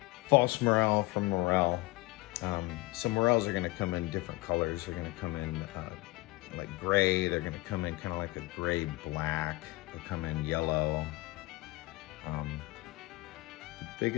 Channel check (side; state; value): right; quieter; 21.0 dB